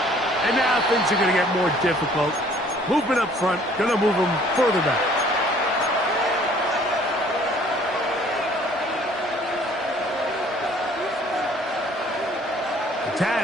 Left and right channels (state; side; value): normal; both; correlation 0.57